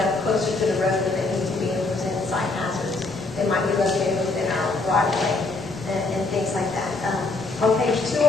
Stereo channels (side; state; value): right; quieter; 3.4 dB